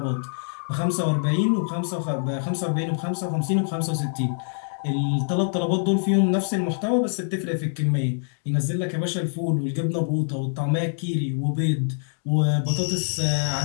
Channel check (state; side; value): silent; right; digital silence